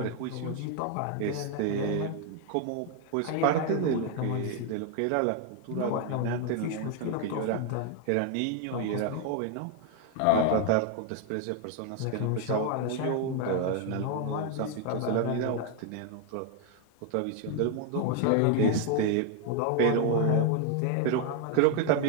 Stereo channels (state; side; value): different; both; correlation 0.01